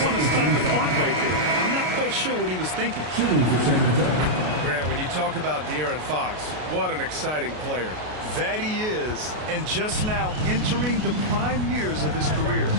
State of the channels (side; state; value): left; late; 33 ms